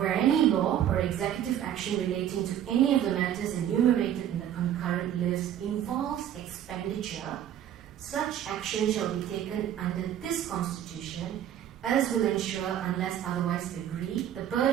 any law or executive action relating to any of the matters enumerated in the concurrent list involves expenditure, such action shall be taken under this constitution as will ensure, unless otherwise agreed, the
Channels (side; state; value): left; quieter; 10.6 dB